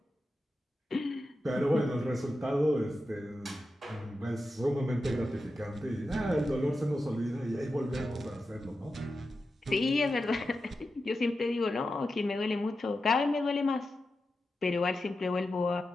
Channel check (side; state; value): both; normal; correlation 0.91